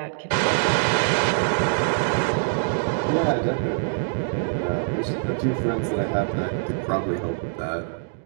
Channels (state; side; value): silent; left; digital silence